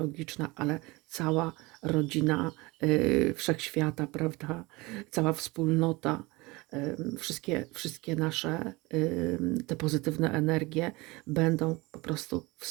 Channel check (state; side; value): quieter; left; 23.4 dB